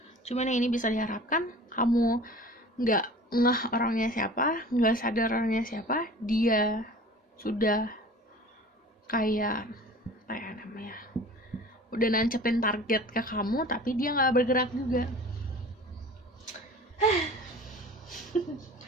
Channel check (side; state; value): both; normal; correlation 0.42